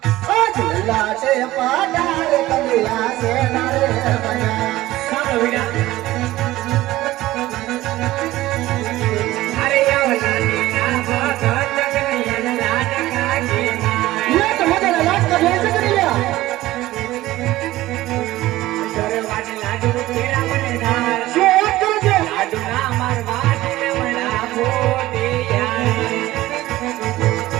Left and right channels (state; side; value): quieter; left; 16.6 dB